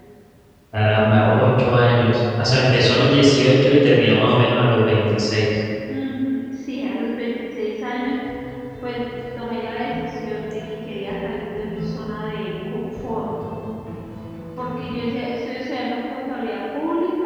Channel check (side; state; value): both; identical; correlation 1.00